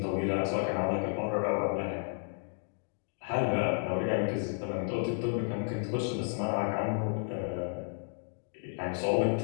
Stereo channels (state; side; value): silent; right; 56 dB below the other